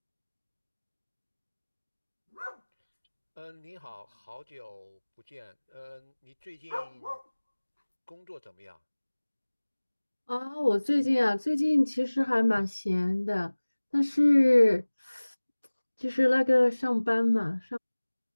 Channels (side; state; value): both; inverted; correlation -1.00